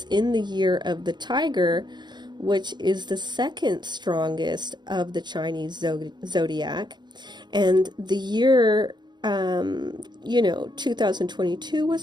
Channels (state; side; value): late; left; 0.21 ms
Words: in the year of the tiger, which is the second strongest of the Chinese zodiac. And the year, 2022